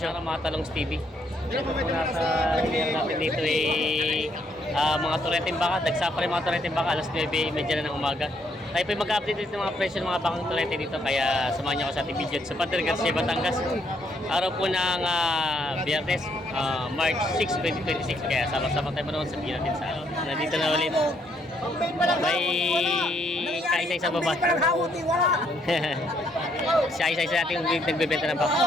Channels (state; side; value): normal; both; correlation 0.71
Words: Mga talong Stevie. Nasa natin dito mga tureteng baka. Dagsa pa rin mga tureteng baka. Alas 9:30 na ng umaga. Tayo po mag-update dito ng mga presyo ng mga bakang turete dito. Kaya samahan niyo ako sa ating video sa Padre Garcia, Batangas. Araw po ng Biyernes, March 6, 2026. Kaya sama-sama tayo manoon sa natin sa nandito na ulit. May kaisa-isa baba. Siya isa-isa natin nagbebenta ng